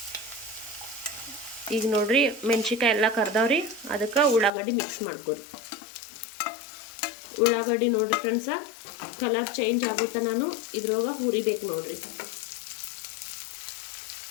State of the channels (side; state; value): right; drops out; at 4.5 s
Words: ಈಗ ನೋಡ್ರಿ ಮೆಣಸಿನ್ಕಾಯಿ ಎಲ್ಲ ಕರ್ದವ್ರಿ. ಅದಕ್ಕೆ ಉಳ್ಳಾಗಡ್ಡಿ ಮಿಕ್ಸ್ ಮಾಡ್ಕೋರಿ. ಉಳ್ಳಾಗಡ್ಡಿ ನೋಡ್ರಿ ಫ್ರೆಂಡ್ಸ ಕಲರ್ ಚೇಂಜ್ ಆಗುತ್ತಾ ನಾನು ಇದ್ರೊಳಗೆ ಹುರಿಬೇಕು ನೋಡ್ರಿ.